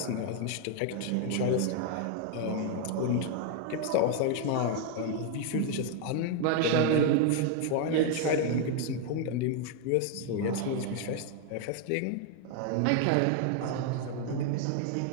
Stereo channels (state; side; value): different; both; correlation 0.01